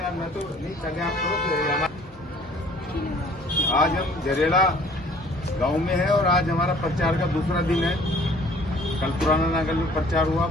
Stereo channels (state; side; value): normal; both; correlation 0.54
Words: मैं तो नहीं, पहले आप करो। आज हम झरेड़ा गांव में है और आज हमारा प्रचार का दूसरा दिन है। कल पुराना नागल में प्रचार हुआ,